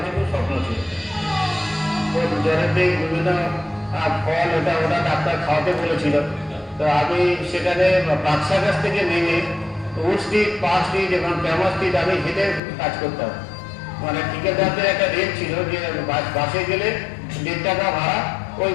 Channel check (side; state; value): right; drops out; at 12.6 s